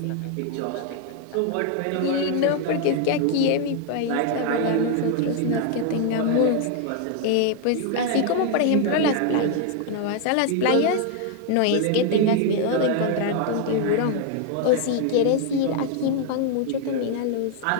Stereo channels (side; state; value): both; different; correlation 0.00